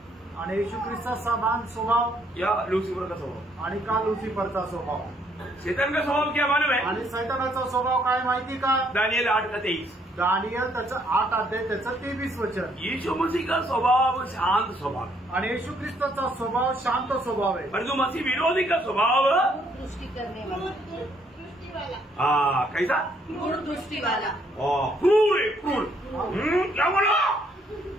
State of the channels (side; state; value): both; normal; correlation 0.68